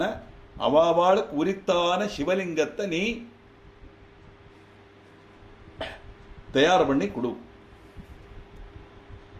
அவாவாளுக்கு உரித்தான சிவலிங்கத்தை நீ தயார் பண்ணி கொடு.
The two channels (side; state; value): both; identical; correlation 1.00